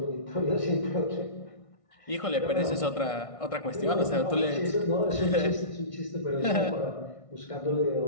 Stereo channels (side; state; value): right; late; 1.6 ms